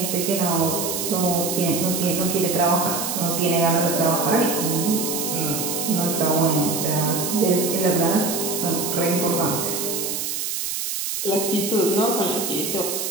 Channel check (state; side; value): noise; right; hiss, 3 dB below the sound